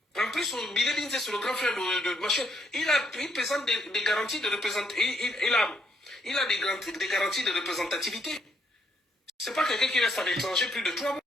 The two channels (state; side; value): normal; both; correlation 0.72